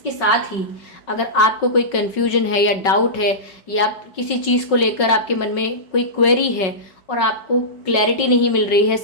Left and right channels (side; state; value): right; late; 5.4 ms